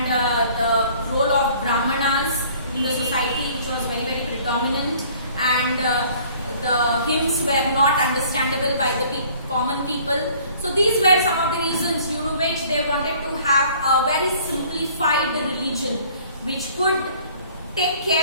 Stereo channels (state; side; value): inverted; both; correlation -0.54